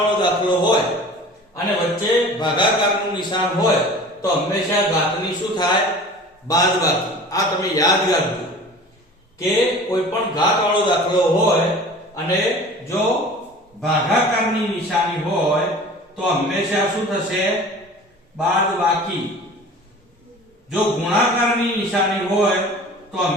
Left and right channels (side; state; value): both; normal; correlation 0.41